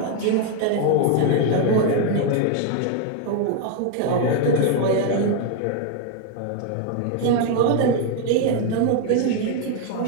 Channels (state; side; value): different; both; correlation 0.00